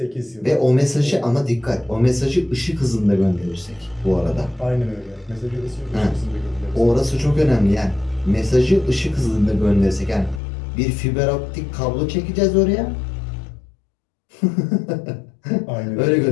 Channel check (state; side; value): drops out; right; at 10.4 s